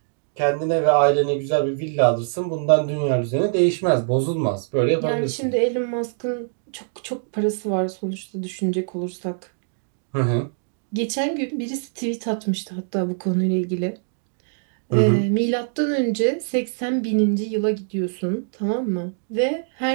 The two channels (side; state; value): left; silent; digital silence